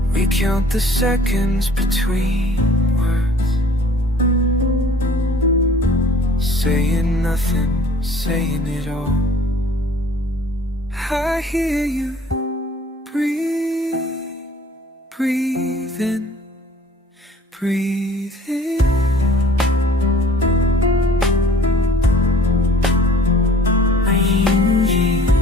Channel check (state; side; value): normal; both; correlation 0.52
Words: We count the seconds between words, saying nothing, saying it all. I hear you breathe, breathing, breathing.